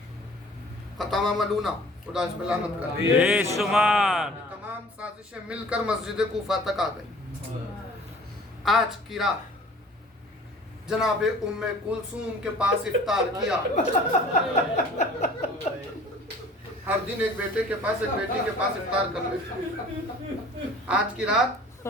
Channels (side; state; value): both; normal; correlation 0.49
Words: खतामा मलूना खुदा इस पे लानत करे। तमाम साजिशें मिलकर मस्जिद कूफा तक आ गई। आज की रात जनाबे उम्मे कुलसूम के पास इफ्तार किया। हर दिन एक बेटे के पास एक बेटी के पास इफ्तार कर लेते। आज की रात,